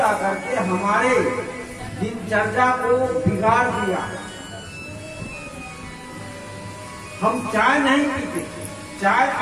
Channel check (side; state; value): both; identical; correlation 1.00